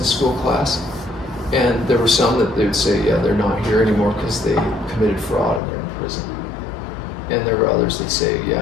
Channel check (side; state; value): right; drops out; at 5.6 s